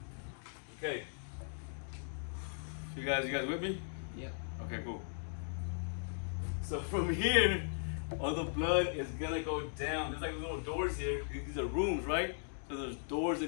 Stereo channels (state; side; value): silent; right; digital silence